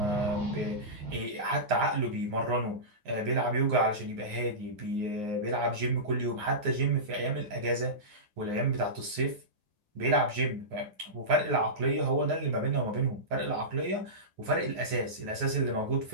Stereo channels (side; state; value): left; late; 9.6 ms